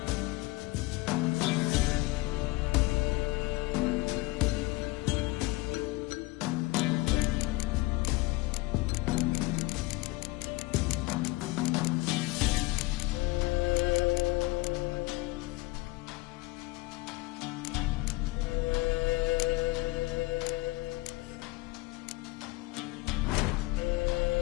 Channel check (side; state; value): right; quieter; 21.9 dB